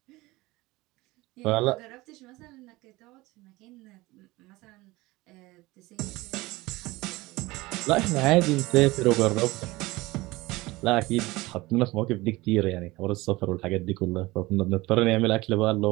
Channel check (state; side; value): quieter; left; 20.6 dB